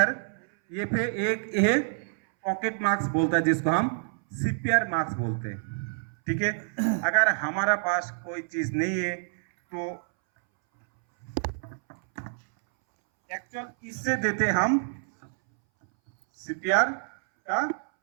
ये पे एक ये पॉकेट मार्क्स बोलता है जिसको हम सीपीआर मार्क्स बोलते हैं। ठीक है, अगर हमारा पास कोई चीज नहीं है तो एक्चुअल इससे देते हम सीपीआर का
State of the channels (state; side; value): silent; left; 60 dB below the other